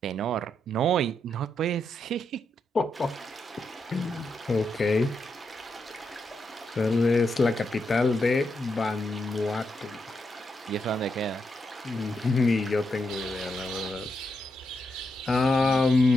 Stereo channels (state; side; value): normal; both; correlation 0.83